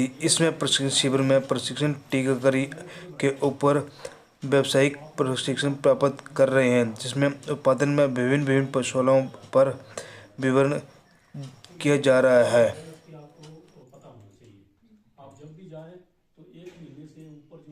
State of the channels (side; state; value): both; identical; correlation 1.00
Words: इसमें प्रशिक्षण शिविर में प्रशिक्षण टीकाकरी के ऊपर व्यावसायिक प्रशिक्षण प्राप्त कर रहे हैं, जिसमें उत्पादन में विभिन्न पशुओं पर विवरण किया जा रहा है। आपको पता होना चाहिए। आप जब भी जाएं तो 1 महीने से ऊपर